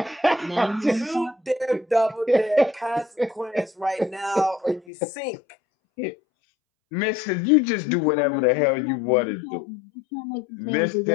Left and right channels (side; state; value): right; drops out; at 4.8 s